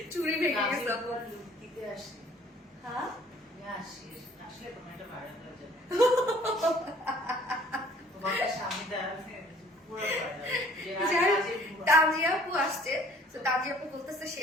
চুরি ভেঙে গেছে আপু। দিতে আসি। হ্যাঁ, আসি আসলে তোমার এটা ভাড়া হয়ে যাবে। তোমার স্বামীটা পুরো তাজিয়া আপু আসছে, তো তাজিয়া আপু বলতেছে সে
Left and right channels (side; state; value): both; normal; correlation 0.56